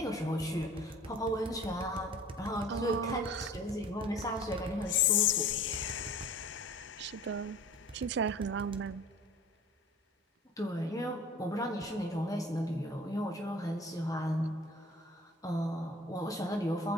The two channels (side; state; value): both; normal; correlation 0.45